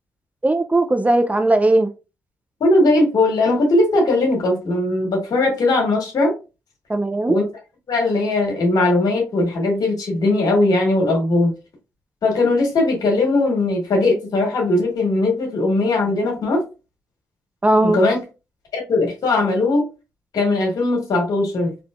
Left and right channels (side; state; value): both; normal; correlation 0.74